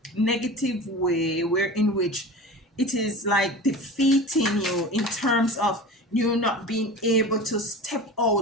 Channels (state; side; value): normal; both; correlation 0.34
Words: negative way, where in which it is like defeating you in terms of you not being able to step